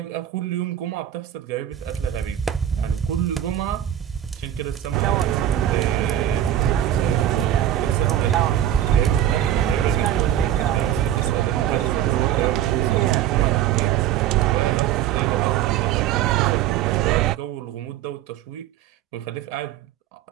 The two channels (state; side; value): quieter; left; 11.4 dB